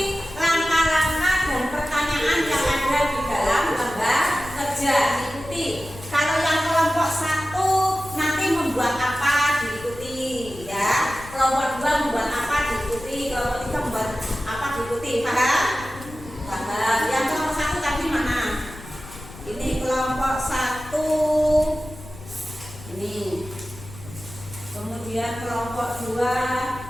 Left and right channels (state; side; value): noise; left; rumble, 16 dB below the sound